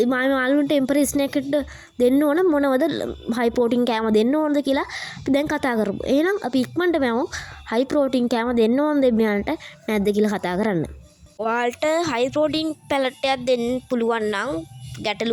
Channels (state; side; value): identical; both; correlation 1.00